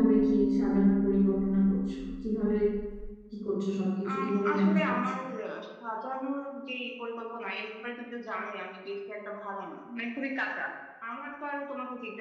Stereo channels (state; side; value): identical; both; correlation 1.00